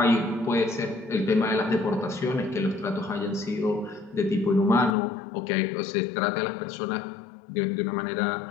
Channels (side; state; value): right; drops out; at 5.0 s